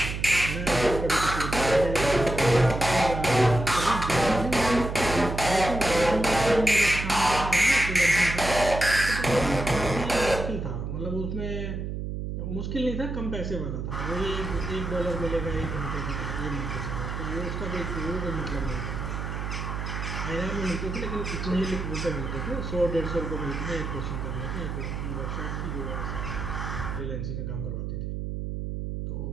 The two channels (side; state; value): right; noise; hum, 4 dB below the sound